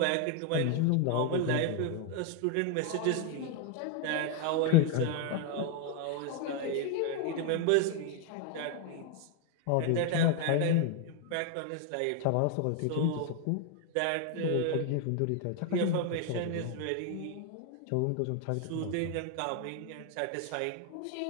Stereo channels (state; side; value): different; both; correlation 0.01